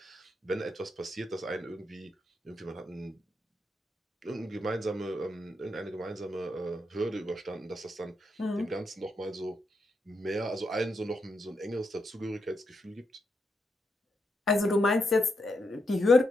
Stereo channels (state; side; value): normal; both; correlation 0.82